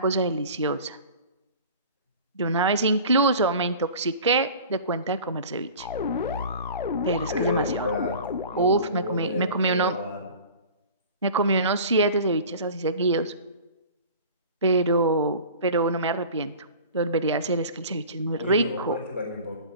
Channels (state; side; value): inverted; both; correlation -0.40